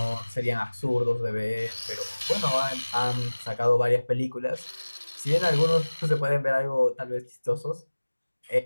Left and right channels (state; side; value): inverted; both; correlation -1.00